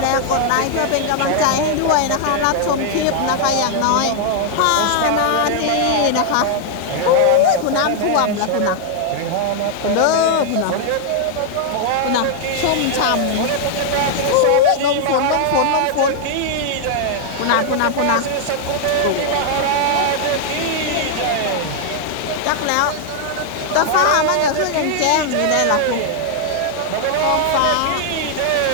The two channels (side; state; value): both; different; correlation 0.00